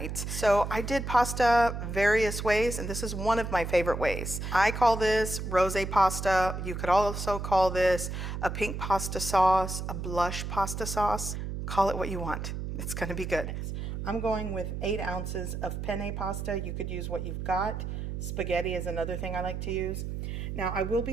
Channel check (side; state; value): right; noise; hum, 5 dB below the sound